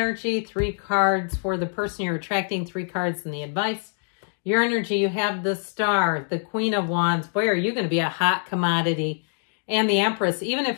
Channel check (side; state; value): right; silent; digital silence